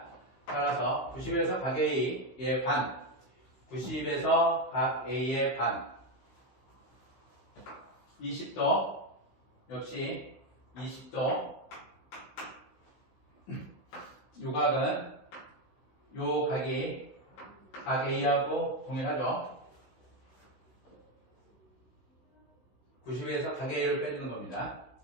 따라서 90에서 각 A의 반, 90에서 각 A의 반, 20도 역시 20도 요 각은 요 각이 각 A하고 동일하죠. 90에서 각 A를 빼주는 겁니다.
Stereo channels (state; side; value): late; right; 16 ms